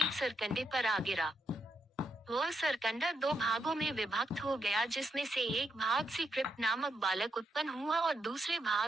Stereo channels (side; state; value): both; normal; correlation 0.80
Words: सरकंडे पर आ गिरा। वह सरकंडा 2 भागों में विभक्त हो गया, जिसमें से एक भाग से कृप नामक बालक उत्पन्न हुआ और दूसरे